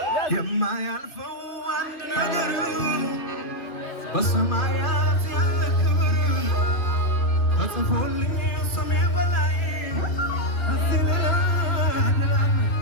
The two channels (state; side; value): late; right; 2.5 ms